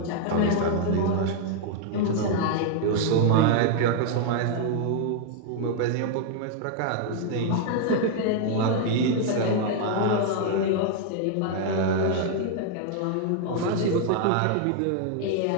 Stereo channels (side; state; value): both; different; correlation 0.00